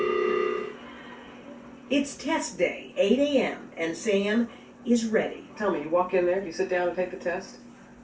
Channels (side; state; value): both; identical; correlation 1.00